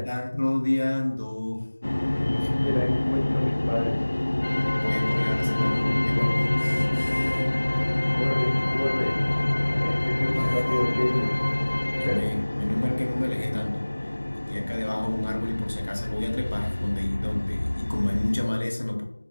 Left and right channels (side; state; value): both; inverted; correlation -1.00